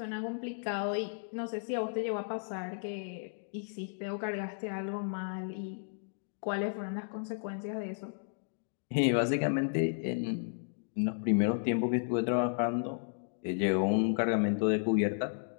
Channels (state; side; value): silent; right; digital silence